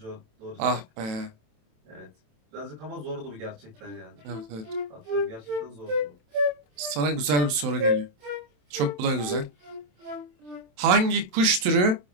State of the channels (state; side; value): late; left; 27 ms